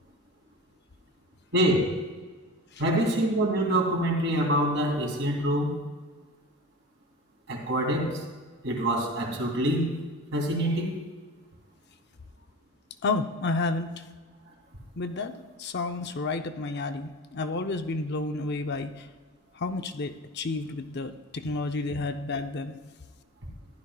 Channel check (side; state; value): both; normal; correlation 0.32